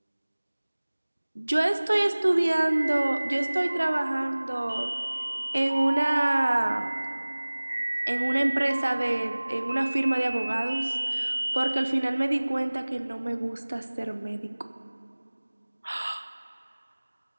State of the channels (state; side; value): inverted; both; correlation -1.00